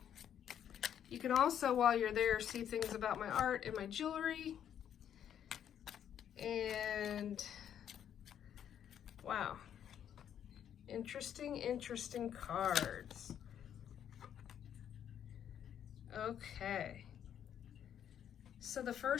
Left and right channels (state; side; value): quieter; right; 9.5 dB